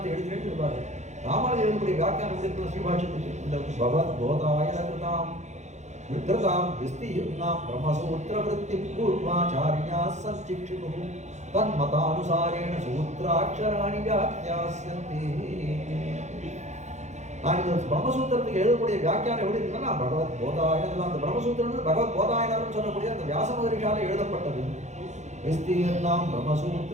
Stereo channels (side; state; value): left; late; 0.33 ms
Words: எழுதுகிறேன்னு இருப்பாரு. ராமானுஜன் எழுதக்கூடிய வியாக்கியானம் இருக்கிற ஸ்ரீபாஷ்யத்துக்கு இந்த பகவத் போதாய கிருதாம் விக்ரதாம் விஸ்தீர்ணாம் பிரம்மசூத்திர விருத்தி பூர்வாச்சாரியா சச்சிக்ஷிது தன்மதானுசாரேண சூத்ராட்சராணி வியாக்கியாஸ்யந்தி. நான் இந்த பிரம்மசூத்திரத்துக்கு எழுதக்கூடிய வியாக்கியானம் எப்படி இருக்குன்னா பகவத் போதாயனம். அந்த பிரம்மசூத்திரம் பகவத் போதாயனம் சொல்லக்கூடிய அந்த வியாச மகரிஷால எழுதப்பட்டது. விஸ்தீர்ணாம்